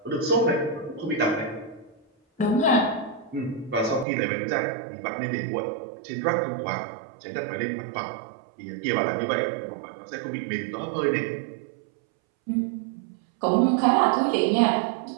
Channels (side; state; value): left; drops out; at 4.0 s